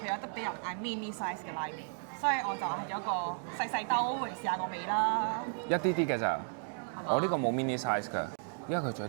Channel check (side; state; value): left; silent; 55 dB below the other